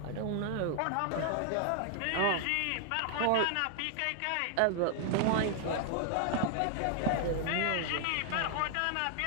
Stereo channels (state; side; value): different; both; correlation 0.00